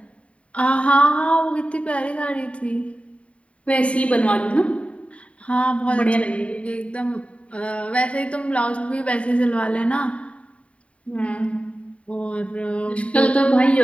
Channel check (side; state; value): right; late; 0.063 ms